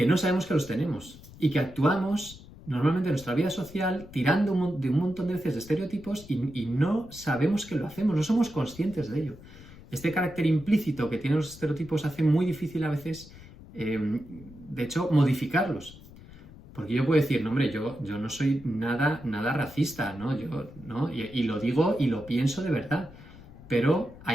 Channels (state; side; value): noise; left; rumble, 19 dB below the sound